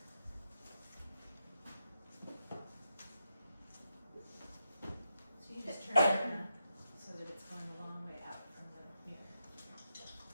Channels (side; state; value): both; inverted; correlation -0.86